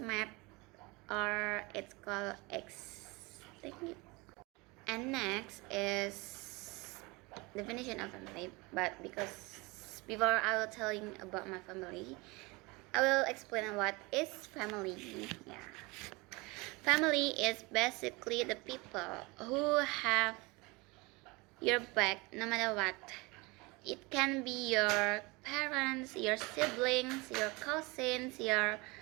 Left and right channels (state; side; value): quieter; left; 25.4 dB